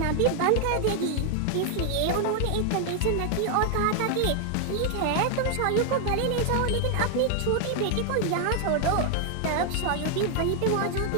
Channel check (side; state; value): both; different; correlation 0.00